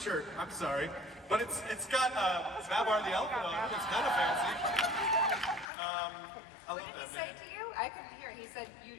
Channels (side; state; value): right; drops out; at 5.7 s